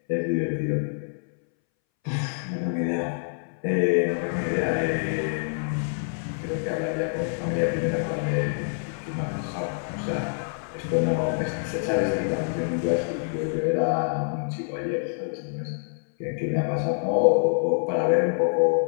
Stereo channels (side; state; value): right; silent; 61 dB below the other